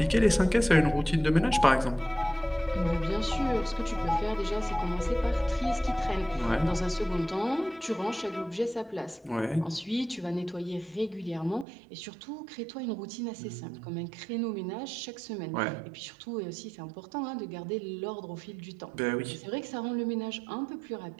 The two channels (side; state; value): left; drops out; at 11.7 s